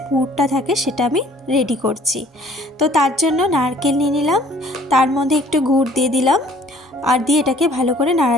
পুরটা থাকে সেটা আমি রেডি করছি। তো তার জন্য নারকেল নিয়ে নিলাম, তার মধ্যে একটু গুড় দিয়ে দিলাম, আর দিয়ে এটাকে ভালো করে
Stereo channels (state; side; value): normal; both; correlation 0.56